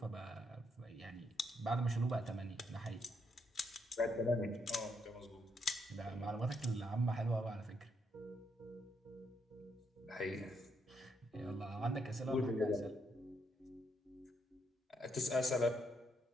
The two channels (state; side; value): normal; both; correlation 0.76